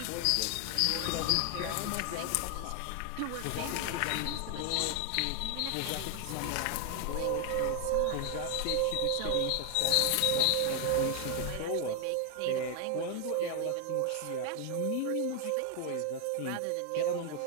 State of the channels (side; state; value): both; different; correlation 0.00